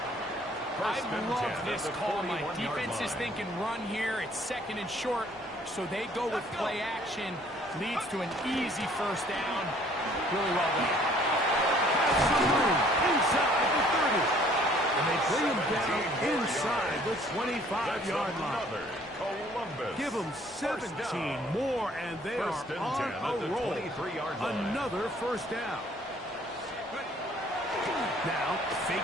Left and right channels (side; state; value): both; normal; correlation 0.58